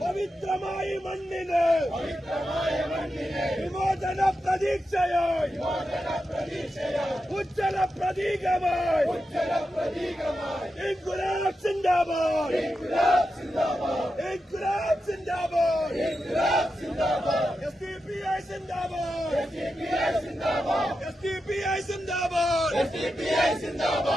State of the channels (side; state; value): both; normal; correlation 0.89